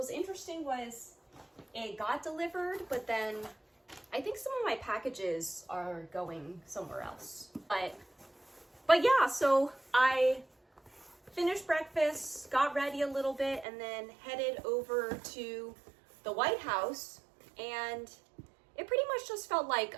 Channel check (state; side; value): drops out; left; at 13.7 s